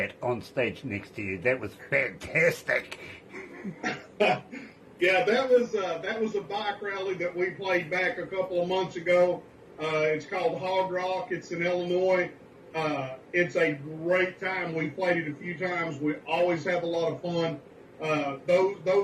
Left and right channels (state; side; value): identical; both; correlation 1.00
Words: on stage next to you. That was fantastic. Yeah, that was a bike rally that we played back a couple of months ago. It's called Hog Rock. It's in Illinois. It's a great time. We played it a few times. We always have a lot of fun.